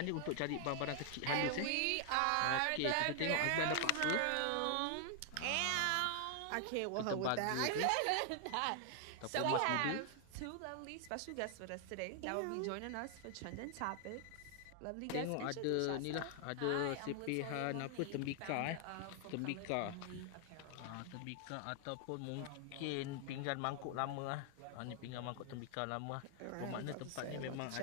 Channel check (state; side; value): different; both; correlation 0.00